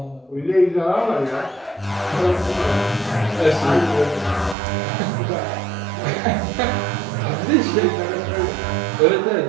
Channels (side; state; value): left; drops out; at 4.5 s